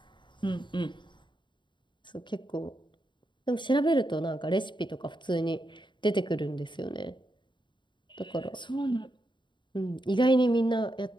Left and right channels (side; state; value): right; late; 0.23 ms